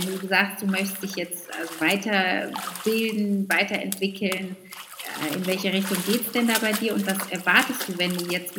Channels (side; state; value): both; identical; correlation 1.00